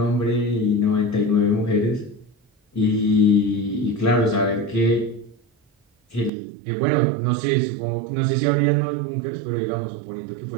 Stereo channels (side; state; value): left; drops out; at 6.3 s